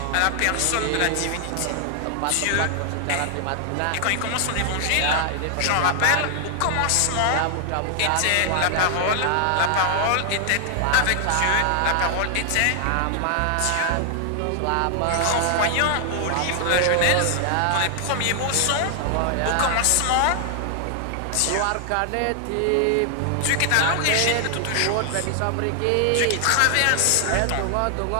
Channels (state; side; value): different; both; correlation 0.00